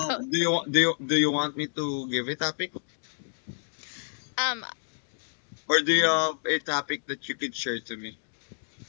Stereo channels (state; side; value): silent; right; digital silence